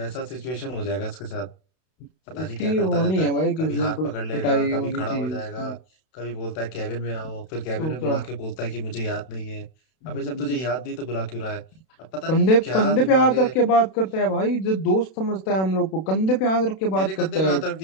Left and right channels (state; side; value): late; right; 32 ms